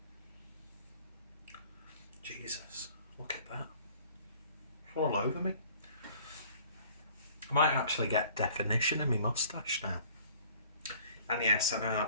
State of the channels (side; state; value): both; inverted; correlation -0.52